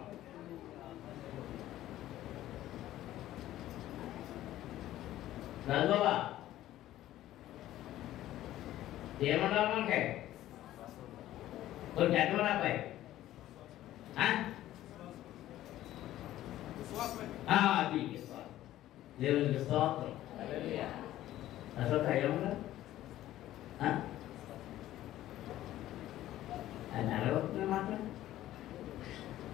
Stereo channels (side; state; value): right; quieter; 14.0 dB